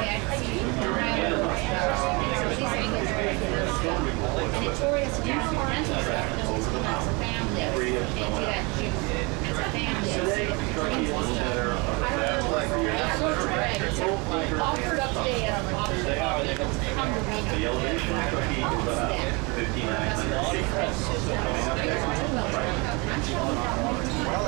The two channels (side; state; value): left; quieter; 28.4 dB